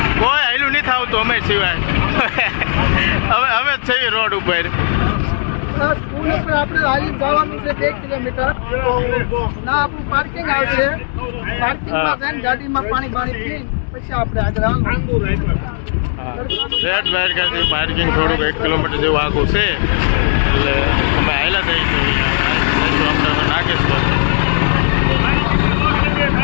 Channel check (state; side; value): silent; right; 69 dB below the other